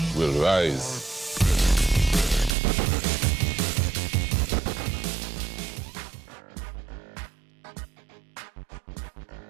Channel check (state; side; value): drops out; left; at 2.6 s